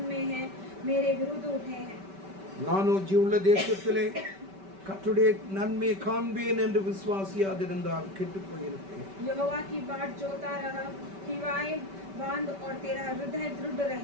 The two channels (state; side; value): late; left; 5.2 ms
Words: में हैं, मेरे विरुद्ध उठे हैं। நானோ ஜீவுள்ள தேசத்திலே கர்த்தருடைய நன்மையை காண்பேன் என்று விசுவாசியாதிருந்தால் கெட்டு போயிருப்பேன். यहोवा की बाट जोता रहा, हिवाए बांध और तेरा हृदय दृढ़